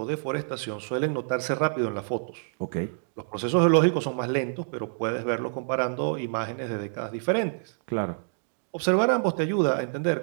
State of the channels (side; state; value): left; silent; digital silence